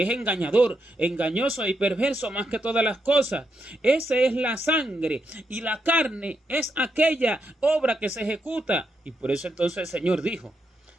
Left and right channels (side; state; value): both; normal; correlation 0.82